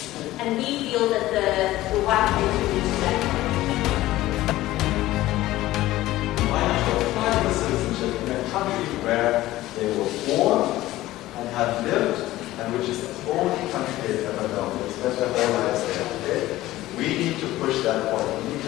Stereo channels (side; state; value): right; quieter; 16.2 dB